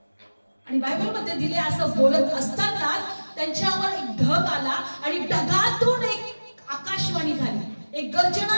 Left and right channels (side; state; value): both; inverted; correlation -1.00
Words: आणि बायबल मध्ये दिले असं बोलत असताना त्यांच्यावर एक ढग आला आणि ढगातून एक आकाशवाणी झाली, एक